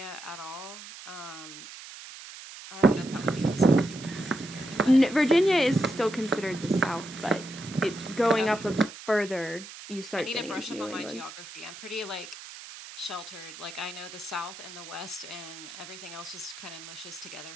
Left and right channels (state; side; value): noise; right; hiss, 14 dB below the sound